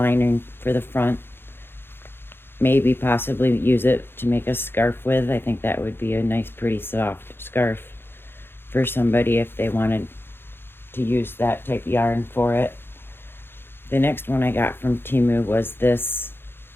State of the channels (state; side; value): late; right; 0.11 ms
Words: for the front. Maybe possibly use it to make a scarf with. I think that would be a nice, pretty soft scarf for somebody if they wanted to use that type of yarn for it. The next one I got from Temu was this.